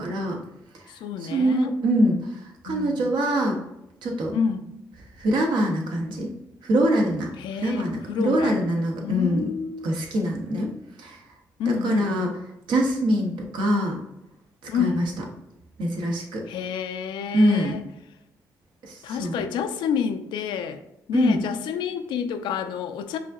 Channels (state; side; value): normal; both; correlation 0.72